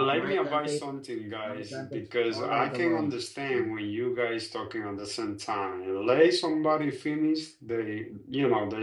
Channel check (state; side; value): identical; both; correlation 1.00